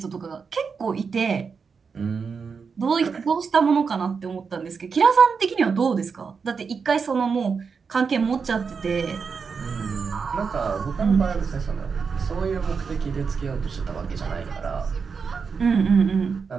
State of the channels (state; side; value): quieter; left; 5.6 dB